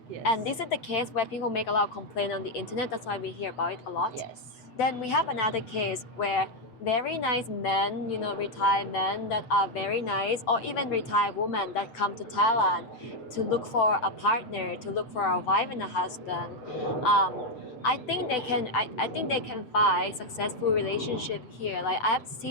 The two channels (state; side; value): late; right; 7.9 ms